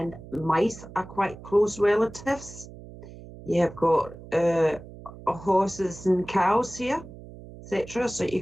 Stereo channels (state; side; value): noise; right; hum, 16 dB below the sound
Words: mice are quite close relatives. You have got horses and cows here, etc. So you